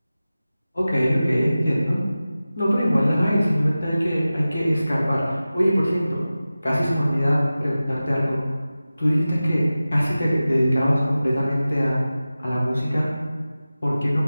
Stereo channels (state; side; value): inverted; both; correlation -0.96